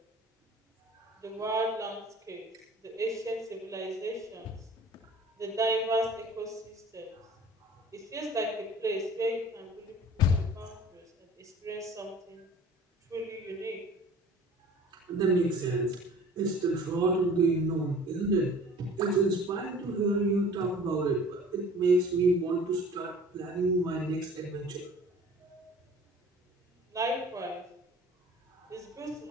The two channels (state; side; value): normal; both; correlation 0.46